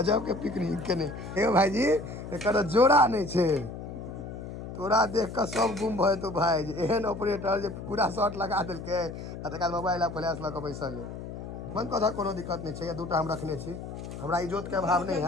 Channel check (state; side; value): noise; left; hum, 9 dB below the sound